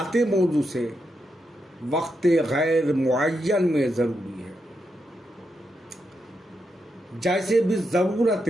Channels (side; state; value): both; normal; correlation 0.84